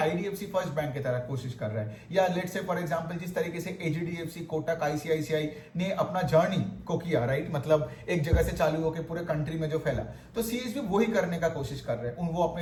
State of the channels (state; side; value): identical; both; correlation 1.00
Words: first bank की तरह कोशिश कर रहा है, या लेट्स से फॉर एग्जांपल जिस तरीके से HDFC, कोटक, ICICI ने अपना जर्नी को किया, राइट, मतलब एक जगह से चालू होकर पूरे कंट्री में जो फैला, तो CSB वही करने का कोशिश कर रहे हैं। वो